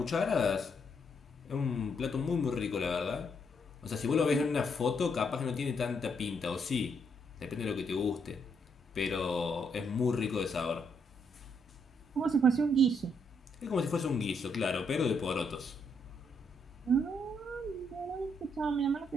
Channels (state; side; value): normal; both; correlation 0.75